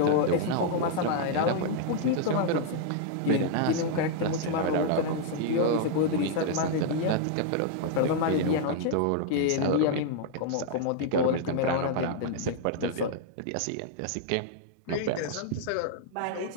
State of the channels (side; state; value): both; different; correlation -0.01